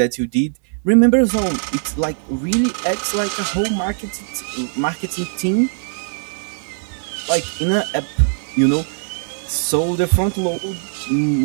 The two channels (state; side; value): silent; left; 66 dB below the other